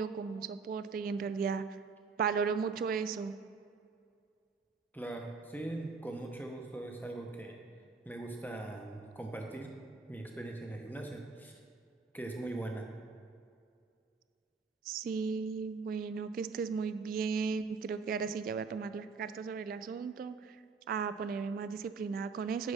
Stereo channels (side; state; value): left; quieter; 4.7 dB